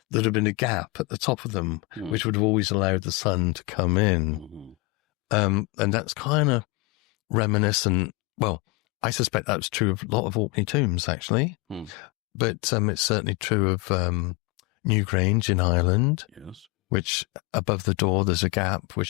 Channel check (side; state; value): right; quieter; 24.5 dB